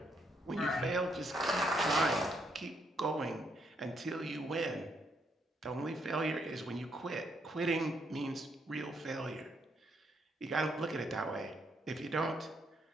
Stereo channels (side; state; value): both; normal; correlation 0.74